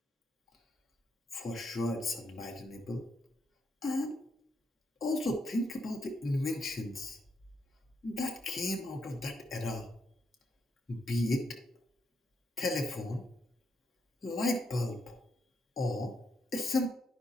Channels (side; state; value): both; normal; correlation 0.79